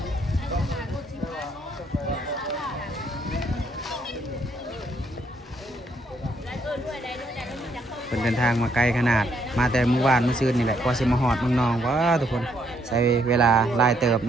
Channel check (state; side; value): normal; both; correlation 0.72